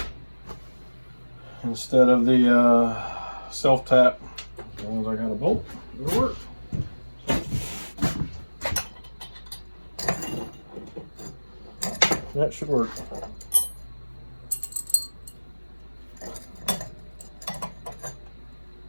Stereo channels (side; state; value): both; inverted; correlation -1.00